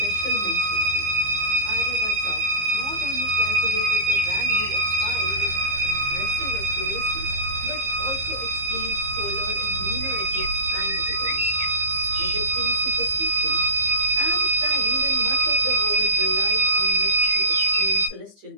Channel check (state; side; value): late; left; 15 ms